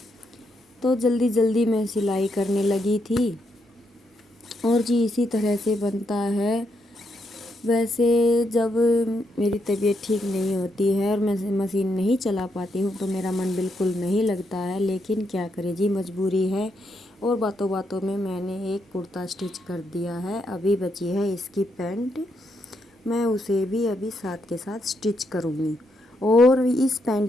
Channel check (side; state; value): both; normal; correlation 0.79